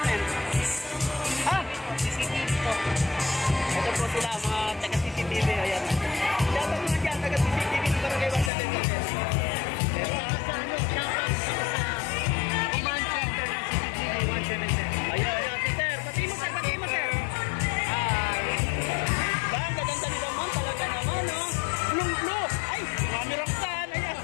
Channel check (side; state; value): right; drops out; at 8.5 s